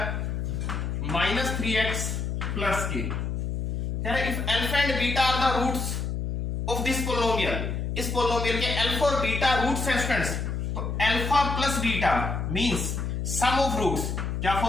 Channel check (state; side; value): noise; left; hum, 2 dB below the sound